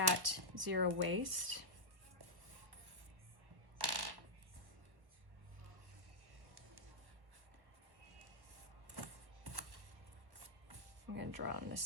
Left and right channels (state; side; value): late; left; 1.2 ms